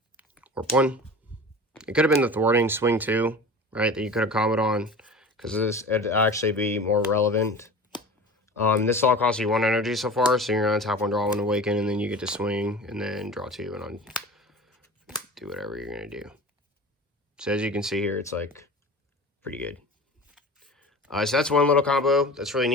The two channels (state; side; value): normal; both; correlation 0.37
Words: Warp 1. It could have been the thwarting swing 2, right? That you could have comboed on, because this would actually be more relevant. This all costs you 1 energy so far, so you're gonna tap 1, draw 1, awaken, and then you get to swing, and then draw 2, and do whatever you're gonna do. So as you can see here, it's like pretty good. So that's one little combo that's really